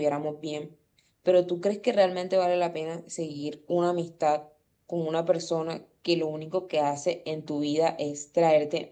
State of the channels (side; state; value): both; identical; correlation 1.00